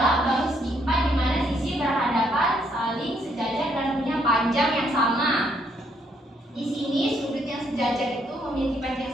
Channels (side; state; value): both; normal; correlation 0.71